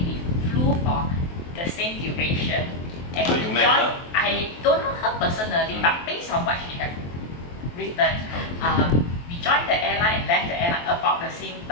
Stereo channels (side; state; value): right; late; 23 ms